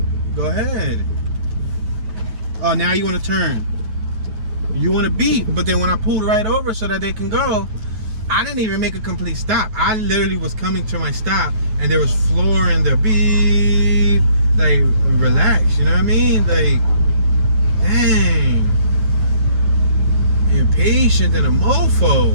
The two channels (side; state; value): left; late; 9.3 ms